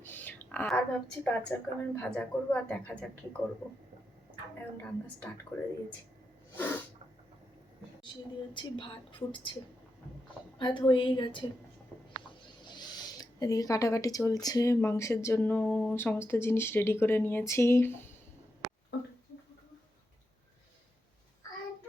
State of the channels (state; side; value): normal; both; correlation 0.87